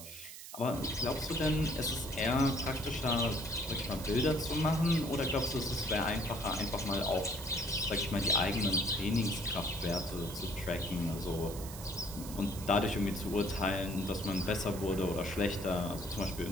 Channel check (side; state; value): right; noise; hiss, 12 dB below the sound